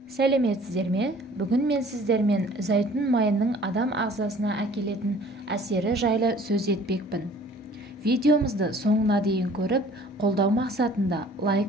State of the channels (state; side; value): normal; both; correlation 0.52